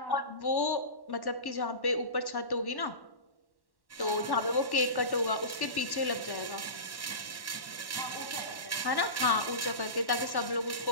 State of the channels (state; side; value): late; right; 1.1 ms